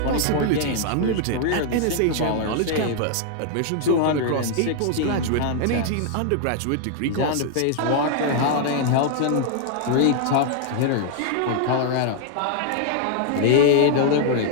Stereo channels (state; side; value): different; both; correlation 0.00